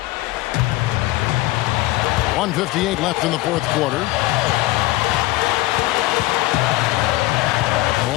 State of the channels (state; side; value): quieter; right; 18.2 dB